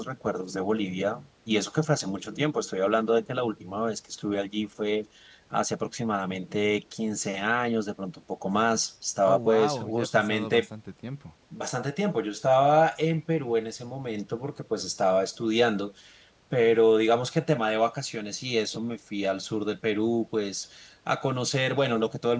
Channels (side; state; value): both; identical; correlation 1.00